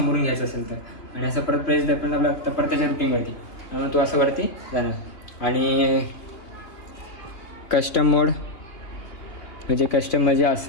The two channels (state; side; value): late; right; 2.8 ms